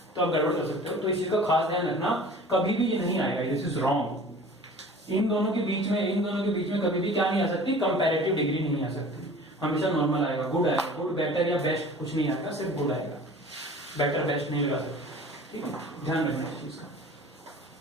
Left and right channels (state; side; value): normal; both; correlation 0.43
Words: तो आप गड़बड़ कर सकते हो, तो इस चीज का खास ध्यान रखना, कभी भी ये नहीं आएगा, दिस इज रॉन्ग। इन दोनों के बीच में कभी भी क्या नहीं आ सकती, कंपैरेटिव डिग्री नहीं आ सकती, हमेशा नॉर्मल आएगा, गुड आएगा। गुड बेटर या बेस्ट कुछ नहीं आएगा, सिर्फ गुड आएगा, बेटर बेस्ट नहीं लगा सकते, ठीक है, ध्यान रखना इस चीज का।